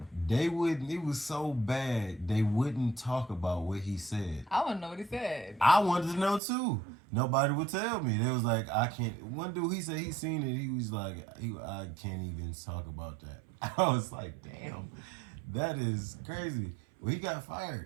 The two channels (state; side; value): drops out; left; at 6.4 s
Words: It was so bad, they wouldn't talk about what he said. I want to know what he said. I wanted to know too. Nobody would tell me. They was like, I can't. One dude, he said he seen it. He was like, I can't even talk about that. I was like, damn, that is crazy. Well, he got